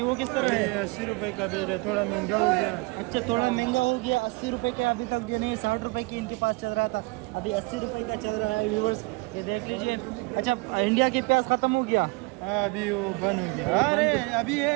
वो किस तरह है? 80 रुपये का बेच रहे, थोड़ा महंगा हो गया। अच्छा, थोड़ा महंगा हो गया। 80 रुपये का अभी तक जो नहीं, 60 रुपये की इनके पास चल रहा था, अभी 80 रुपये का चल रहा है। व्यूवर्स ये देख लीजिए। अच्छा, इंडिया के प्याज ख़त्म हो गया? अभी वो बंद हो गया। अरे अभी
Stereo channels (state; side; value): quieter; left; 26.7 dB